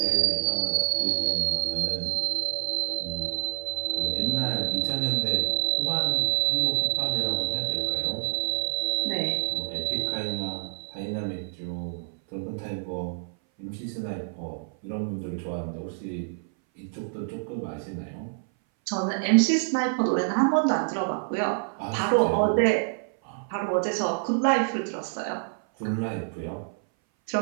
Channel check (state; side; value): silent; left; 58 dB below the other